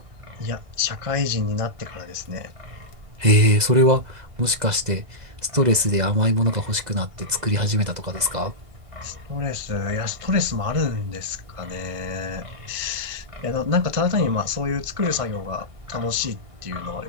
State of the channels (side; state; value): left; late; 2.0 ms